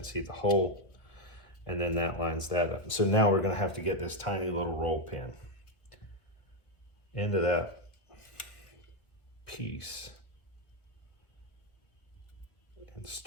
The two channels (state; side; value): late; right; 1.2 ms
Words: see the hole, and then that lines that up. So now we're going to have to get this tiny little roll pin into that piece and